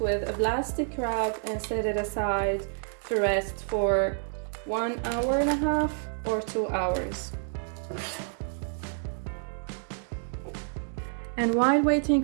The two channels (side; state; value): left; silent; 59 dB below the other